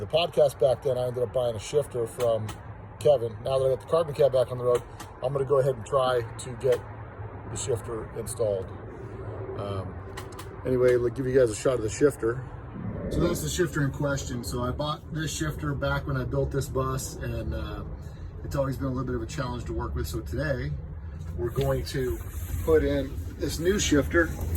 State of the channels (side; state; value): both; identical; correlation 1.00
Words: podcast back then, I ended up buying a shifter from Kevin. Now that I got the carbon cab back on the road, I'm going to go ahead and try to get the shifter installed. Anyway, let's give you guys a shot of the shifter. So that's the shifter in question. So I bought this shifter back when I built this bus, and it's always been a little bit of a challenge to work with. So today we're going to put in this new shifter